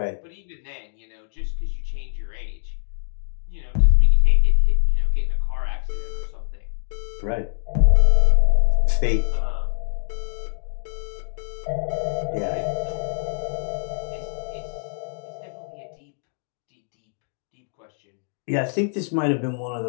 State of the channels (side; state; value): right; silent; digital silence